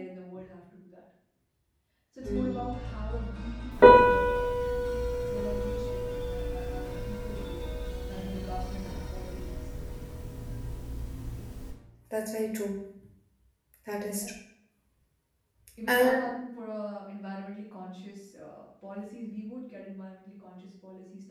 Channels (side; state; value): both; identical; correlation 1.00